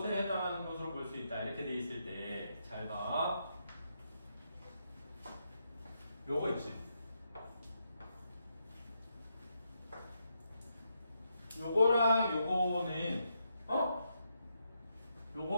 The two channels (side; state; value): both; inverted; correlation -0.81